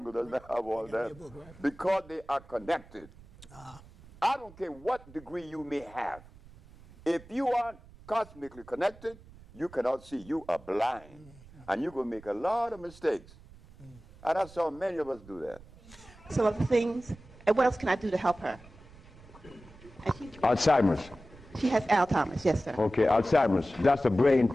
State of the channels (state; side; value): noise; right; rumble, 22 dB below the sound